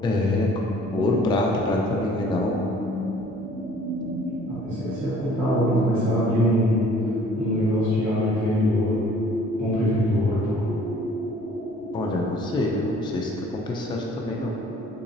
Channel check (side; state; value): both; normal; correlation 0.55